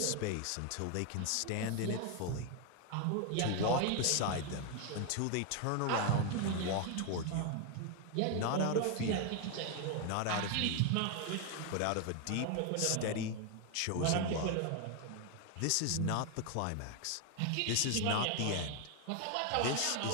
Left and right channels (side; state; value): both; different; correlation 0.01